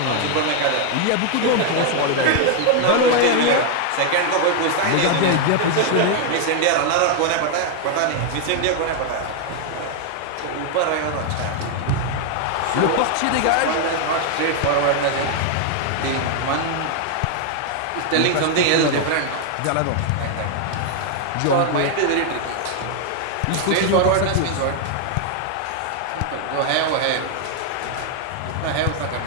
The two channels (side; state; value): both; different; correlation 0.00